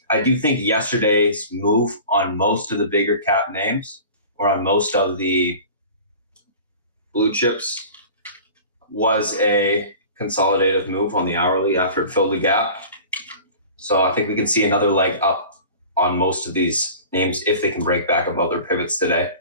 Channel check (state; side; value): inverted; both; correlation -0.40